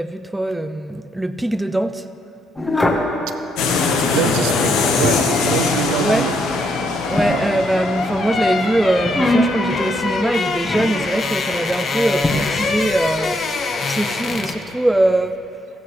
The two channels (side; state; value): both; normal; correlation 0.76